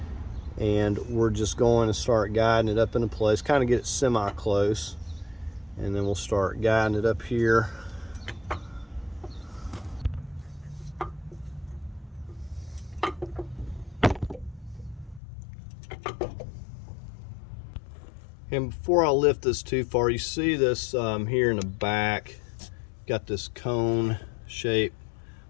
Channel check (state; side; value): drops out; right; at 15.2 s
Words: and we're just going to start guiding it up into place, kind of get it semi-close, and then we'll start guiding it up here. And before I lift this too far, you see this here in the back, got this cone shape